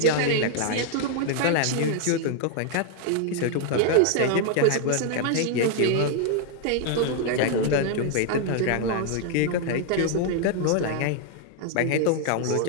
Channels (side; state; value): both; different; correlation 0.00